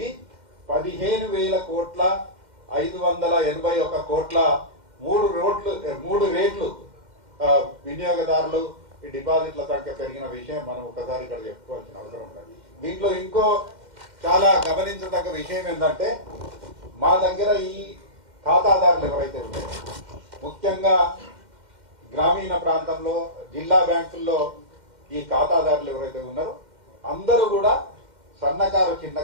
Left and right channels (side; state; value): left; late; 2.1 ms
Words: 15,581 కోట్ల 3 రేట్లు వినియోగదారులు ఈ డిపాజిట్ల సంఖ్య పెరిగిన విషయం మనం ఒకసారి ఇక్కడ చెప్పుకోవాల్సిన అవసరం ఉంది. దీంట్లో ఇంకో చాలా గమనించదగ్గ విషయం ఏంటంటే మా దగ్గర ఈ ఖాతాదారులు ఎవరైతే ఉన్నారో ముఖ్యంగా గ్రామీణ ప్రాంతంలో జిల్లా బ్యాంకుల్లో ఈ ఖాతాదారులు ఎవరైతే ఉన్నారో అందరూ కూడా సన్నకారు